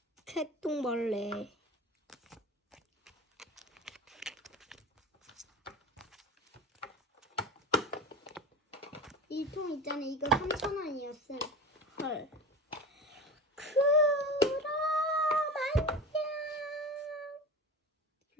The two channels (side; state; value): both; normal; correlation 0.30